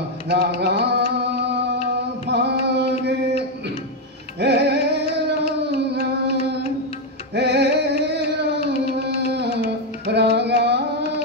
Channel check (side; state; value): both; normal; correlation 0.04